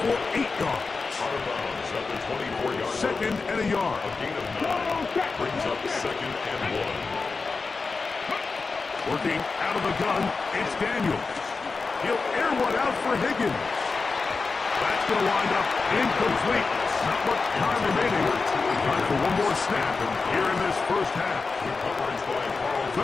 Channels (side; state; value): right; quieter; 4.3 dB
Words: for 8 yards. Out of bounds at the 24-yard line. 2nd and a yard. A gain of 9. Brings up 2nd and 1. Working out of the gun, it's Daniels. He'll air one out for Higgins. That's going to wind up incomplete. Not much time remaining. Time for one more snap here in this first half.